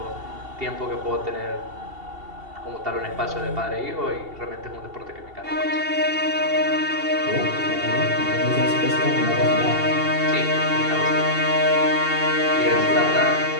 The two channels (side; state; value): left; late; 2.7 ms